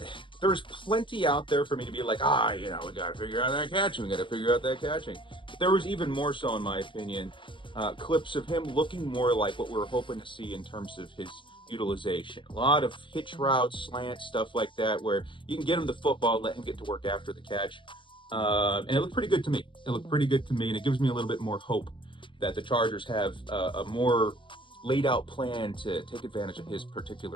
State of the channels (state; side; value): late; right; 0.24 ms